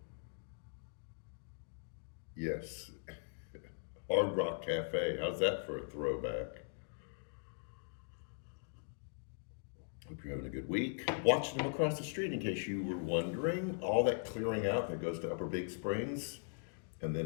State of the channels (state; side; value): silent; right; digital silence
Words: Yes. Hard Rock Cafe. How's that for a throwback? Hope you're having a good week. Watching them across the street, in case you were wondering, all that clearing out that goes to Upper Big Springs. And